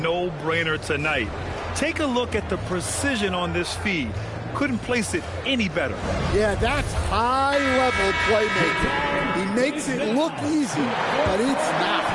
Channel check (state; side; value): identical; both; correlation 1.00